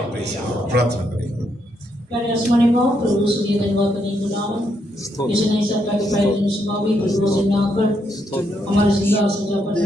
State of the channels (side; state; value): both; normal; correlation 0.77